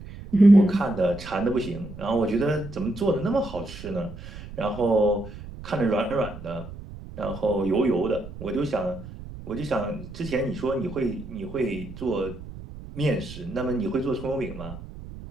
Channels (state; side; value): noise; right; rumble, 13 dB below the sound